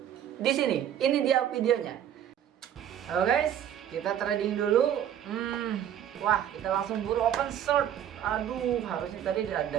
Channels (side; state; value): left; quieter; 10.2 dB